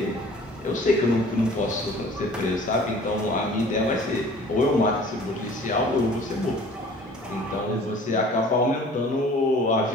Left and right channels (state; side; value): normal; both; correlation 0.48